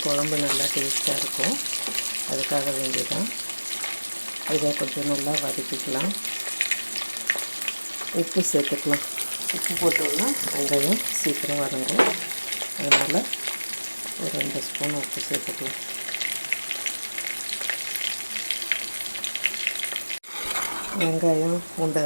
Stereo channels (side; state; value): both; inverted; correlation -1.00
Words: குழம்பு நல்லா டேஸ்ட்டாக இருக்கும். அதுக்காக வேண்டியதான். இதை கொஞ்சம் நல்லா வதக்கிக்கலாம். உப்பு சேர்த்துக்கலாம். உப்பு போட்டோம்னா வெங்காயம் சீக்கிரம் வதங்கும். அதனால் ஒரு 2 ஸ்பூன் உப்பு சேர்த்துக்கலாம். வெங்காயம்